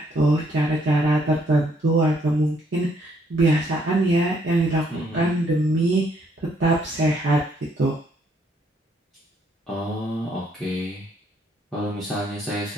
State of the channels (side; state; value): both; normal; correlation 0.69